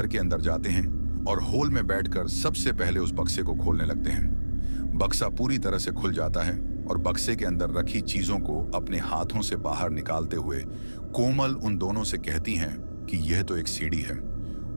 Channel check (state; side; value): inverted; both; correlation -1.00